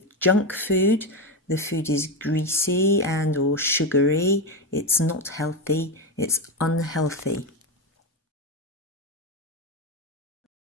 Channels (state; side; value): normal; both; correlation 0.13